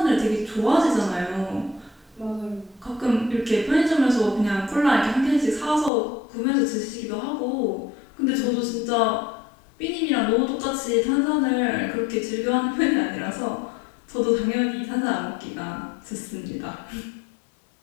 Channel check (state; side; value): drops out; right; at 5.9 s